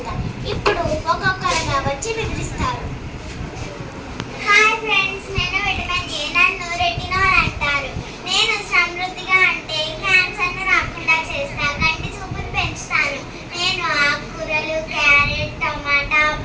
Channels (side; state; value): both; identical; correlation 1.00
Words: ఇప్పుడు ఒక్కొక్కరుగా వచ్చి వివరిస్తారు. హాయ్ ఫ్రెండ్స్, నేను విటమిన్ ఏ. నన్ను రెటినాల్ అంటారు. నేను సమృద్ధిగా అంటే క్యాన్సర్ను రాకుండా చేస్తా, కంటి చూపును పెంచుతాను. నేను ఆకుకూరలు, క్యారెట్, టమాటా,